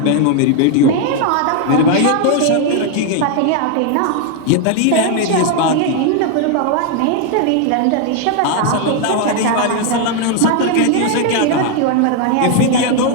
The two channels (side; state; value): both; different; correlation 0.01